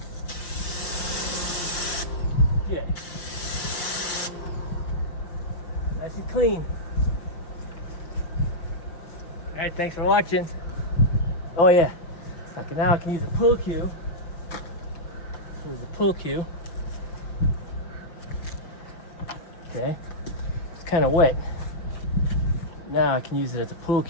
Yeah. Nice and clean. All right. right, thanks for watching. Oh yeah. Okay, now I can use a pull cue. Here's the pull cue. Okay. It's kind of wet. Now I can use it as a pull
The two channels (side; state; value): right; late; 5.9 ms